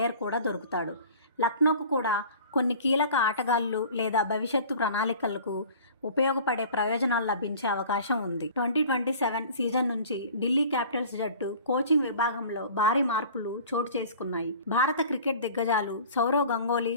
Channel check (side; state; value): both; inverted; correlation -0.44